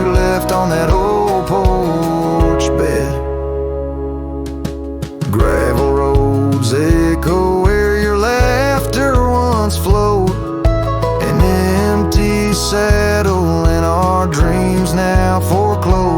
left on that old porch bed. Gravel roads echo where your laughter once flowed, an empty saddle and our dreams now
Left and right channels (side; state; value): both; identical; correlation 1.00